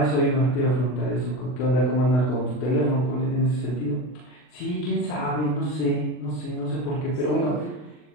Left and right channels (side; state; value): right; late; 40 ms